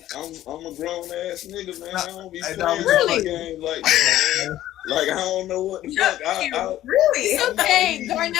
a grown ass nigga, man. I don't be playing games like that, man. Like I don't know what the fuck. Really? It's okay,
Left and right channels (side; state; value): right; quieter; 13.5 dB